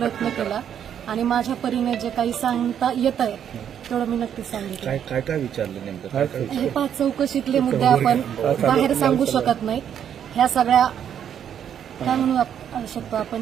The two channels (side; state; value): left; quieter; 9.1 dB